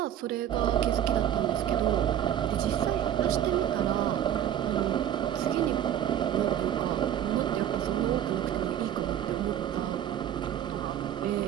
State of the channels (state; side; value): quieter; left; 10.5 dB